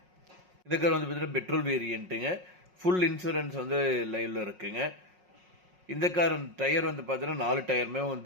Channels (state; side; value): late; left; 5.5 ms